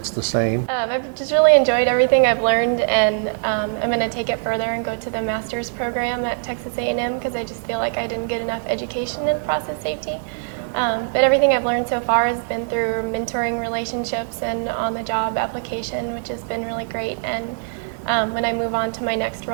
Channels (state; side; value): silent; left; 58 dB below the other